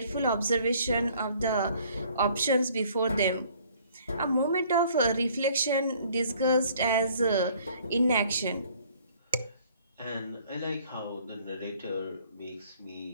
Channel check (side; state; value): both; inverted; correlation -0.58